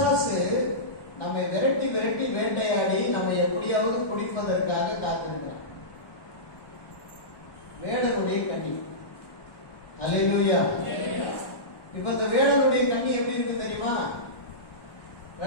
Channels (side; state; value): right; late; 1.1 ms